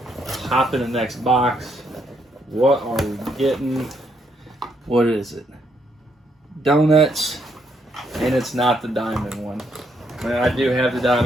Hop in the next box. What are we getting? What is it? Donuts. And it's not the diamond one. I do have the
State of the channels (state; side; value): normal; both; correlation 0.74